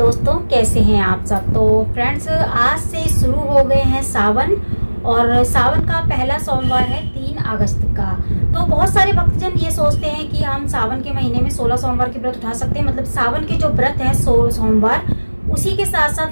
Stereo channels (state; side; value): inverted; both; correlation -1.00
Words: कैसे हैं आप सब। तो फ्रेंड्स आज से शुरू हो गए हैं सावन और सावन का पहला सोमवार है 3 अगस्त का। तो बहुत सारे भक्तजन ये सोचते हैं कि हम सावन के महीने में 16 सोमवार के व्रत उठा सकते हैं। मतलब सावन के जो व्रत हैं सोमवार उसी के साथ